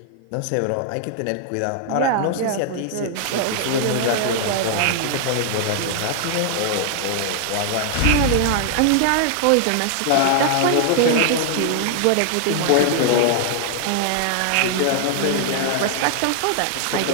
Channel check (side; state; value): both; different; correlation 0.00